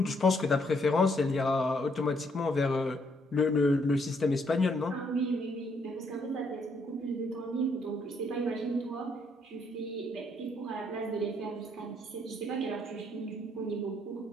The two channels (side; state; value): both; normal; correlation 0.71